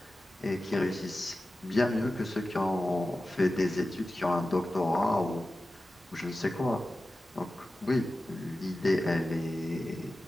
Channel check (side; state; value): both; normal; correlation 0.94